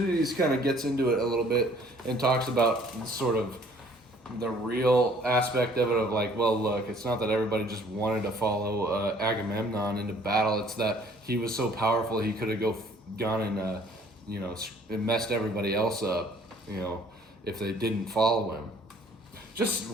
kind of gets into it a little bit and talks about sort of the real aspect of it of like, well, look, it's not that everybody just wanted to follow Agamemnon into battle. It's that he was so powerful he could have gone and and messed everybody else up, if they didn't follow him. Just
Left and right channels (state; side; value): normal; both; correlation 0.57